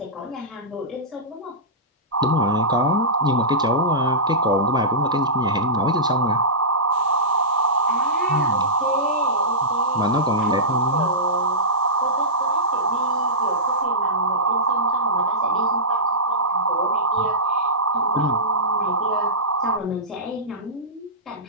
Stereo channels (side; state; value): both; normal; correlation -0.17